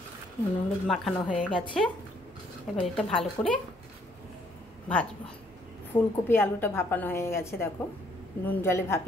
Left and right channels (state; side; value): normal; both; correlation 0.66